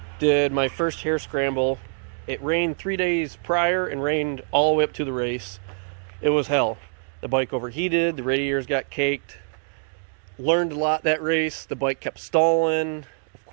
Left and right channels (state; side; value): silent; left; digital silence